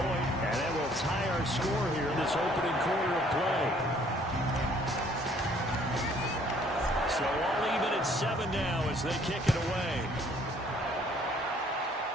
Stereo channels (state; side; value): normal; both; correlation 0.60